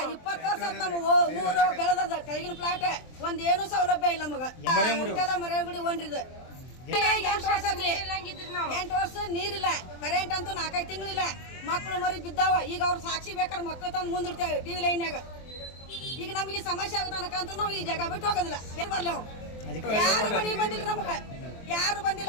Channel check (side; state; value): right; late; 23 ms